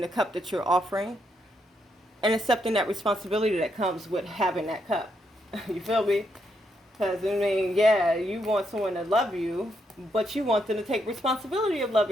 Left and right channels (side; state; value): both; normal; correlation 0.78